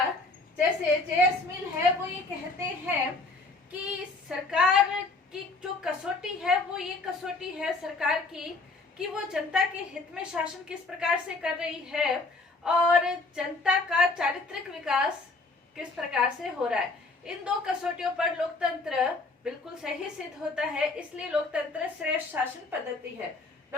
जैसे जेएस मिल है वो ये कहते हैं कि सरकार की जो कसौटी है वो ये कसौटी है सरकार की कि वो जनता के हित में शासन किस प्रकार से कर रही है और जनता का चारित्रिक विकास किस प्रकार से हो रहा है। इन दो कसौटियों पर लोकतंत्र बिल्कुल सही सिद्ध होता है, इसलिए लोकतंत्र श्रेष्ठ शासन पद्धति है।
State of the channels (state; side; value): quieter; right; 3.5 dB